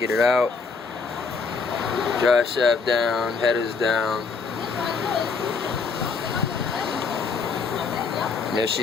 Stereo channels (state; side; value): quieter; right; 4.9 dB